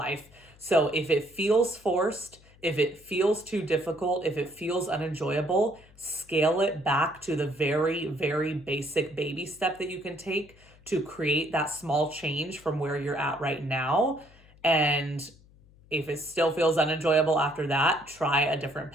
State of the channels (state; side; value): noise; left; hum, 26 dB below the sound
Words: So if it feels forced, if it feels too difficult, if it feels unenjoyable, scale it back to the very, very basic baby step that you can take to create that small change from where you're at right now. And if it still feels unenjoyable after that, try a different